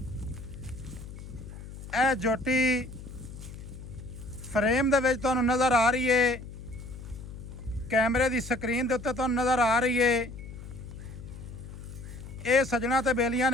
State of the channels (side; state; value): left; noise; hum, 12 dB below the sound